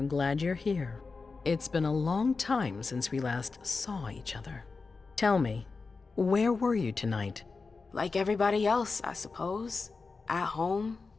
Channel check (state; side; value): quieter; right; 4.3 dB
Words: glad you're here. It's been a long time since we last saw each other. Tell me, where were you tonight? Like everybody else, I suppose. At home,